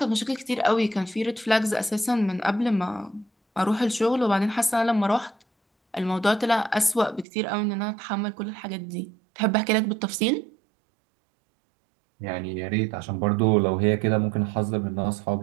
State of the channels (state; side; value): drops out; left; at 7.2 s